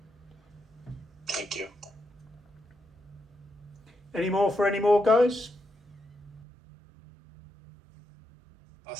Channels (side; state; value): left; drops out; at 6.5 s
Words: Thank you. Any more, guys? I